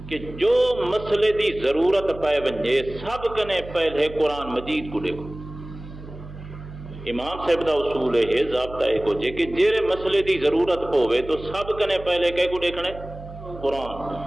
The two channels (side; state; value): right; noise; hum, 14 dB below the sound